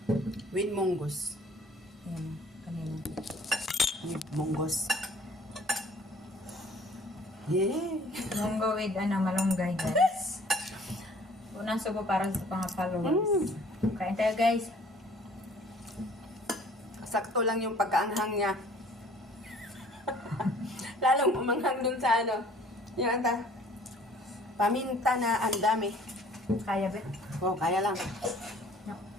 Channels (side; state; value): both; normal; correlation 0.54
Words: With munggos. Ayan, kanina. With munggos. Yeah! Munggo with malunggay, guys. Unang subo para sa mga followers. Kain tayo, guys. Sakto lang yung pagkaanghang niya. Lalong umanghang dun sa yung paminta na ang dami. Kaya ba? Oh, kaya lang.